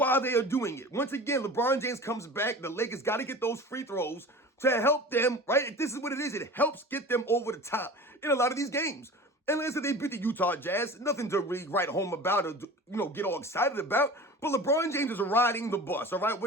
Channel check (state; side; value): normal; both; correlation 0.37